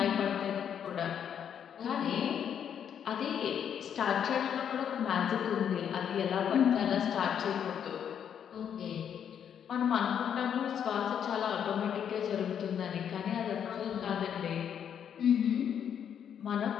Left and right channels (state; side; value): quieter; right; 8.6 dB